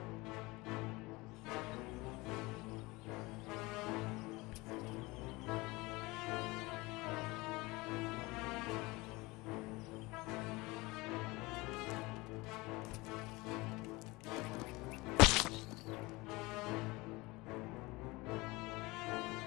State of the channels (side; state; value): right; quieter; 22.9 dB